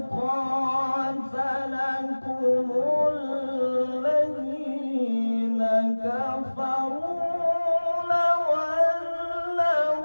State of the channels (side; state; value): both; inverted; correlation -1.00